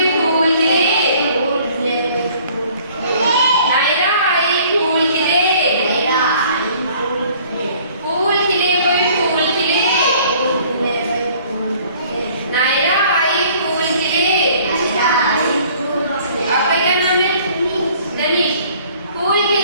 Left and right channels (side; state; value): both; inverted; correlation -0.55